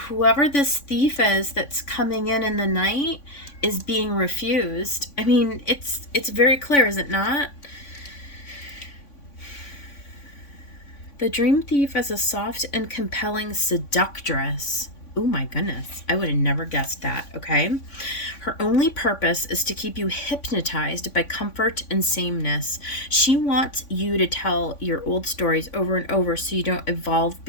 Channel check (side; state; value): right; late; 3.5 ms